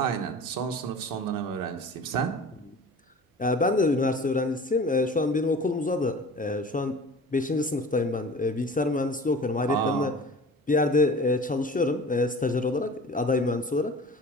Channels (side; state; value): both; normal; correlation 0.41